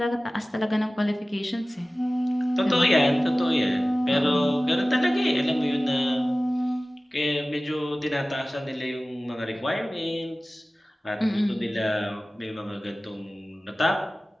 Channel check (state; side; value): normal; both; correlation 0.97